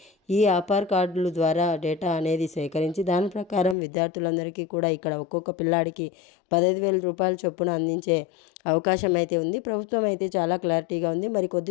ఈ ఆధార్ కార్డుల ద్వారా డేటా అనేది సేకరించి దాని ప్రకారం విద్యార్థులందరికీ కూడా ఇక్కడ ఒక్కొక్క పిల్లాడికి 15,000 రూపాయల చొప్పున అందించే అవకాశం అయితే ఉంది. ప్రభుత్వం అయితే చాలా క్లారిటీగా ఉంది. మరి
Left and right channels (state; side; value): drops out; right; at 3.8 s